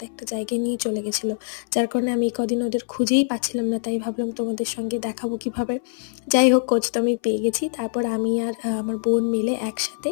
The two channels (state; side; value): silent; right; 59 dB below the other